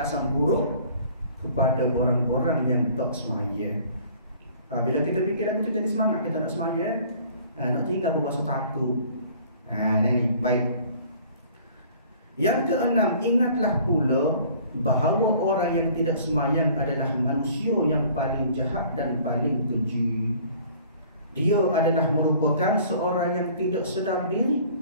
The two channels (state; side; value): inverted; both; correlation -0.52